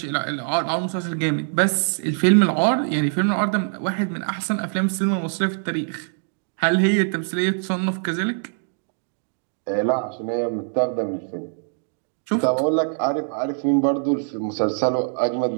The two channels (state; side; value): silent; left; digital silence